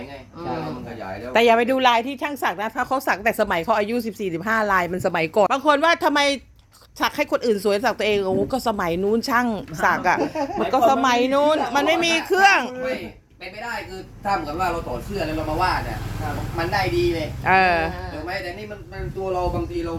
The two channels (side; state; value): both; identical; correlation 1.00